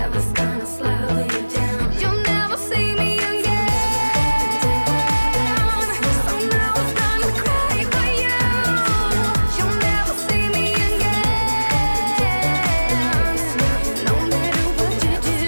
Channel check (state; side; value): inverted; both; correlation -1.00